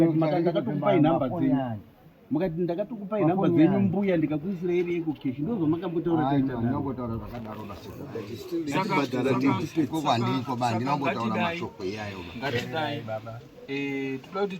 ndakatokupai nhamba dzenyu. Mukati ndakatokupai nhamba dzenyu mbuya ndikakuisira ire Eco Cash. Ndozvo makambotaura taita naro. Ndinongotaura zvakadaro basi. Saka bandiko bandi ndinongotaura mashoko iyayo. ngatidai baba toda kuti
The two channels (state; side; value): identical; both; correlation 1.00